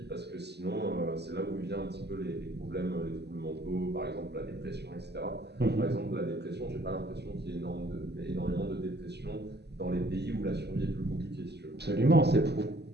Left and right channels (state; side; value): late; left; 0.49 ms